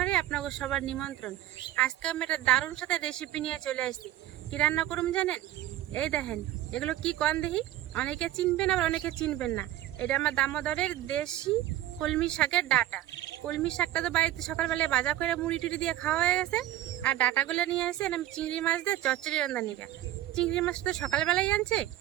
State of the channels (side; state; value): left; quieter; 13.8 dB